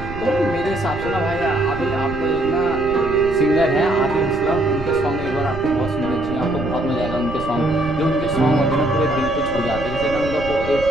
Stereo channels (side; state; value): right; noise; rumble, 10 dB below the sound